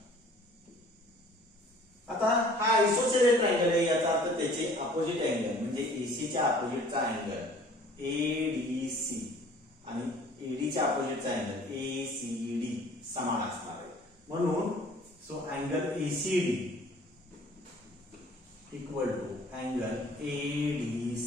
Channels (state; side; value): normal; both; correlation 0.52